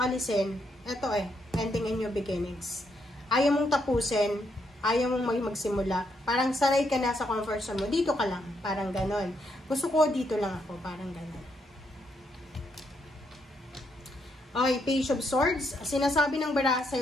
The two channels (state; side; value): normal; both; correlation 0.77